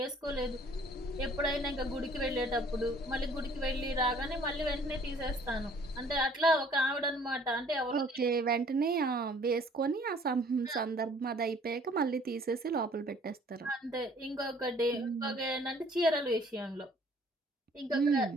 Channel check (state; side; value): normal; both; correlation 0.56